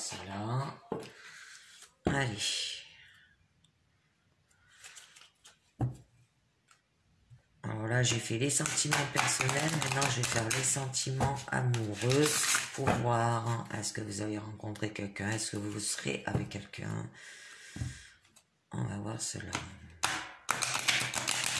là. Allez. Alors là, j'ai fait les sentiments personnels. Maintenant, je vais faire les sentiments amoureux pour voir, hein, est-ce que vous avez rencontré quelqu'un, est-ce que vous serez avec quelqu'un. On va voir cela.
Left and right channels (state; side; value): identical; both; correlation 1.00